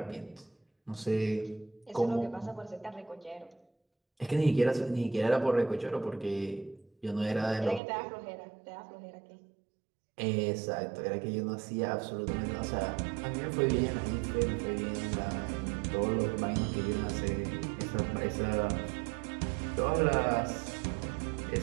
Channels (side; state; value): left; drops out; at 7.8 s